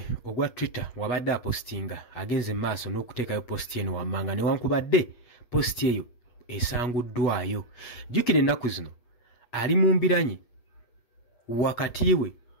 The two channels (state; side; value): late; right; 8.2 ms